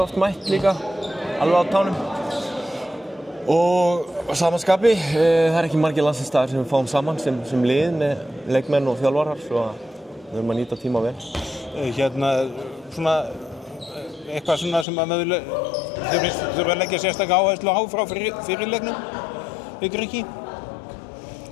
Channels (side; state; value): right; drops out; at 14.9 s